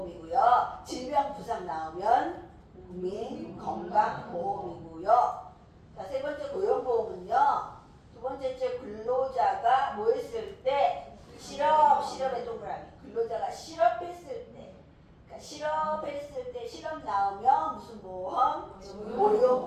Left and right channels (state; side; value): identical; both; correlation 1.00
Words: 질병부상 나오면 국민건강보험이고요. 자, 세 번째 고용보험은요. 두 번째 근로자가 뭐 했을 때 실업의 동그라미. 근로자가 실업했을 때. 그러니까 실업했을 때 실업 나오면 무슨 보험?